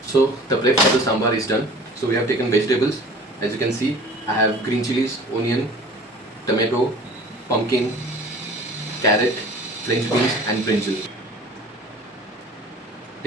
So the prep for the sambar is done. So we have taken vegetables. As you can see, I have green chilies, onion, tomato, pumpkin, carrot, French beans and brinjal.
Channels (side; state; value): both; normal; correlation 0.44